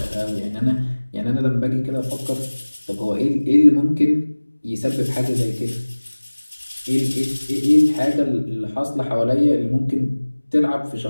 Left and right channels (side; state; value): both; inverted; correlation -1.00